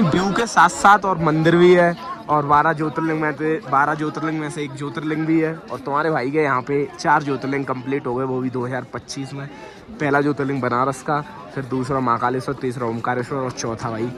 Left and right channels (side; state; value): both; identical; correlation 1.00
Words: व्यू के साथ साथ और मंदिर भी है। और 12 ज्योतिर्लिंग में से एक ज्योतिर्लिंग भी है। और तुम्हारे भाई के यहाँ पे 4 ज्योतिर्लिंग कंप्लीट हो गए, वो भी 2025 में। पहला ज्योतिर्लिंग बनारस का, फिर दूसरा महाकालेश्वर, तीसरा ओमकारेश्वर और चौथा भाई